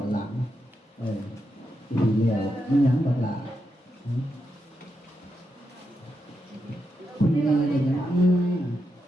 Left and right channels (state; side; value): normal; both; correlation 0.85